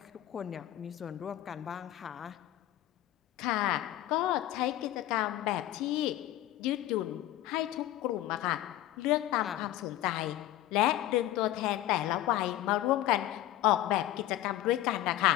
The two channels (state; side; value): quieter; right; 14.3 dB